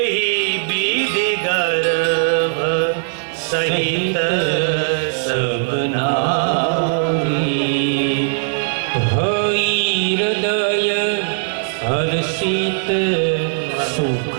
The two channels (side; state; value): left; silent; 62 dB below the other